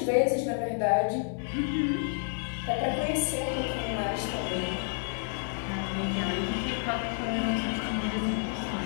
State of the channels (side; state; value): right; silent; 58 dB below the other